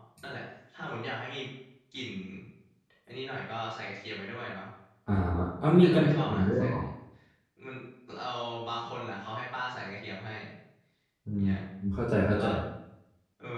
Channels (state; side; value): identical; both; correlation 1.00